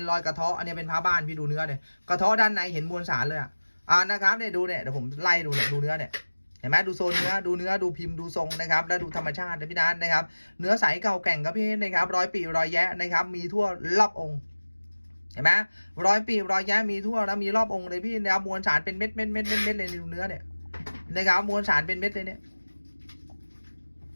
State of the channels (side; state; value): both; inverted; correlation -1.00